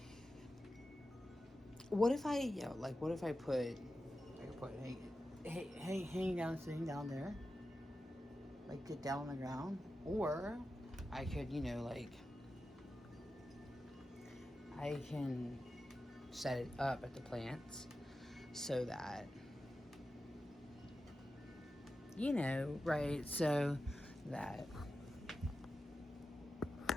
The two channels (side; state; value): both; normal; correlation 0.92